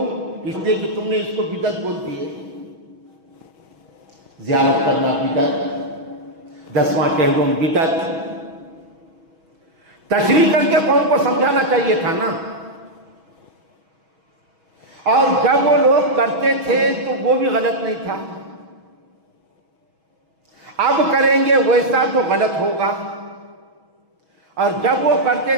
اس لیے کہ تم نے اس کو بدعت بول دیے. زیارت کرنا بدعت، 10واں کہلوم بدعت. تشریح کر کے قوم کو سمجھانا چاہیے تھا نا. اور جب وہ لوگ کرتے تھے تو وہ بھی غلط نہیں تھا. اب کریں گے ویسا تو غلط ہوگا، اور جب وہ کرتے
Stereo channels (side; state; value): left; late; 6.2 ms